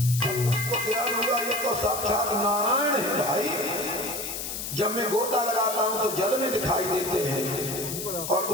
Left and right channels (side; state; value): left; noise; hiss, 5 dB below the sound